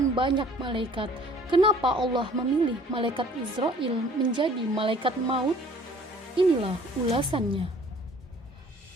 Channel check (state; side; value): normal; both; correlation 0.53